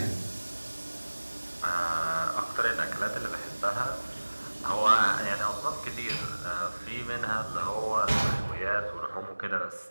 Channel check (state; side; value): inverted; both; correlation -1.00